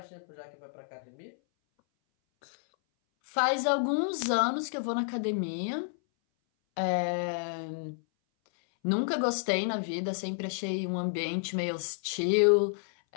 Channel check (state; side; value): silent; right; 58 dB below the other